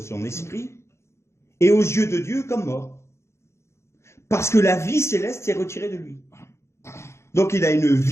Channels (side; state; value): right; late; 0.13 ms